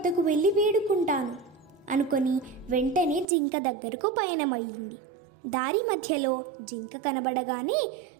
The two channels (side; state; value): left; drops out; at 3.2 s